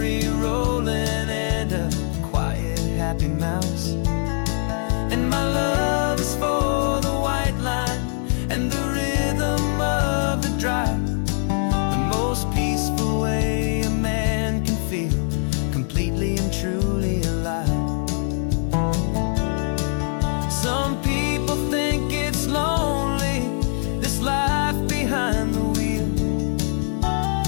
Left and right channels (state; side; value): silent; right; 64 dB below the other